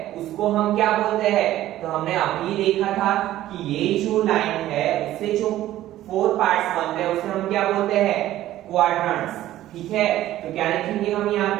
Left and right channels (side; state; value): left; quieter; 14.0 dB